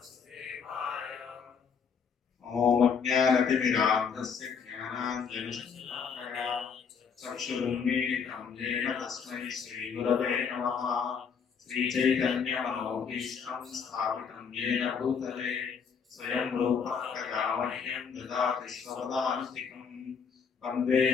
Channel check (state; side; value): quieter; right; 6.3 dB